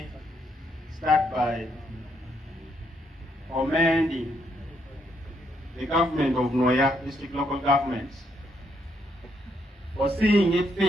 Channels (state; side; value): normal; both; correlation 0.75